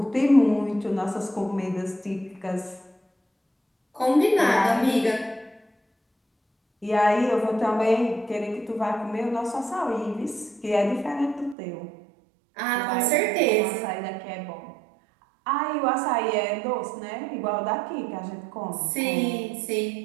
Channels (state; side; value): drops out; left; at 11.6 s